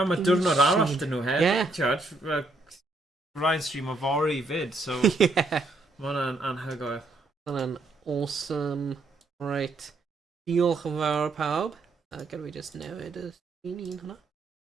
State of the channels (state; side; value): quieter; left; 3.1 dB